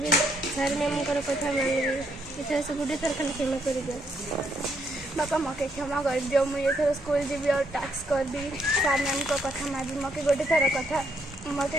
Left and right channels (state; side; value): normal; both; correlation 0.74